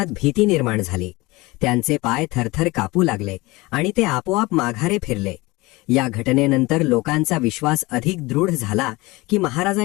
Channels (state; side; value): quieter; right; 22.2 dB